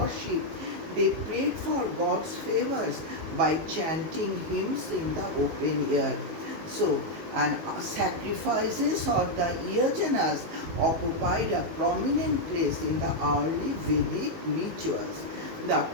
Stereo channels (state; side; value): late; left; 19 ms